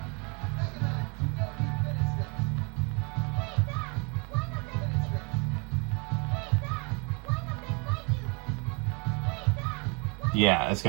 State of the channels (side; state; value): left; quieter; 28.2 dB